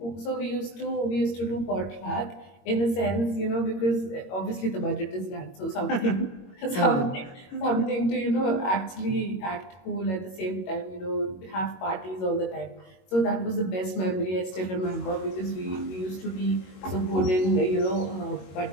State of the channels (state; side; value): late; right; 22 ms